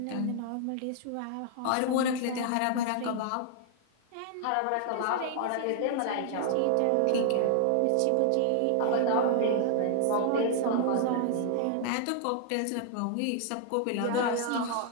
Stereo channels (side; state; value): both; different; correlation 0.00